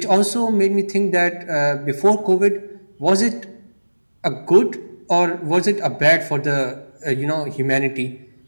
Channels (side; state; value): both; inverted; correlation -1.00